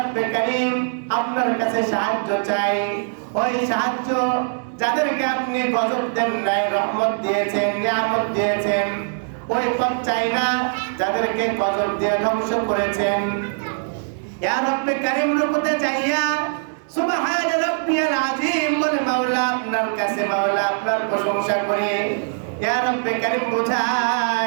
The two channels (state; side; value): silent; left; digital silence